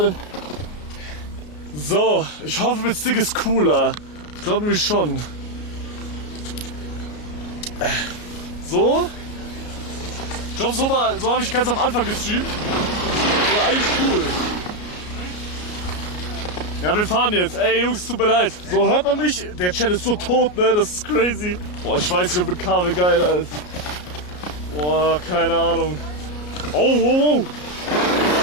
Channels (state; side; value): late; right; 33 ms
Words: So, ich hoffe, mit Stick ist cooler. Ich glaube nämlich schon. So? Ich glaube, so habe ich ganz am Anfang gestreamt. War eigentlich cool. Ja, wir fahren jetzt. Ey, Jungs, tut mir leid. So, hört man mich? Der Chat ist so tot, ne? Das ist crazy. Boah, ich weiß nicht, ob mit Kabel geil ist. Boah, keine Ahnung. Oh, wow, wow.